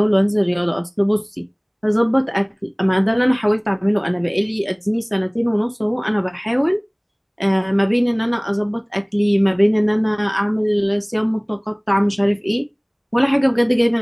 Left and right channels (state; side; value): identical; both; correlation 1.00